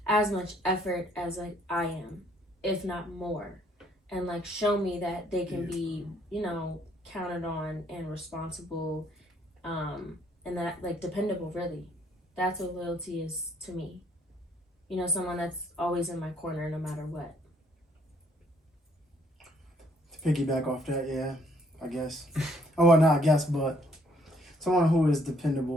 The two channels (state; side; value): normal; both; correlation 0.65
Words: as much effort as I am, if not more. And show me that they can be, counted on and responsible, and that dependable, really. That's what loyalty is to me. you know, someone that's always in my corner no matter what. To piggyback off that, yeah, I guess. Oh, well, not I guess, but someone who is